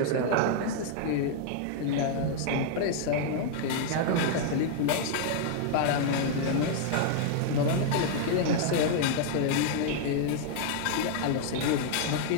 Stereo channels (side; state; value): both; different; correlation 0.00